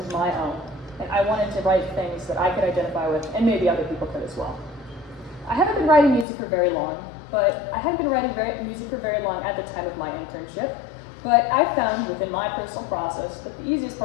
my own. And I wanted to write things that I could identify with, and maybe other people could as well. I haven't been writing music for very long, at the time of my internship, but I found within my personal process that the easiest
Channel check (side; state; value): right; drops out; at 6.2 s